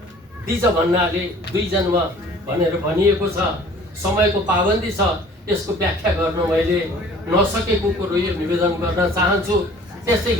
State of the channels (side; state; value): both; normal; correlation 0.50